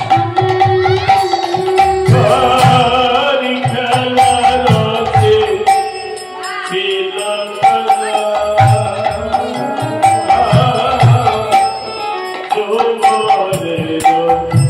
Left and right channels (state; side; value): identical; both; correlation 1.00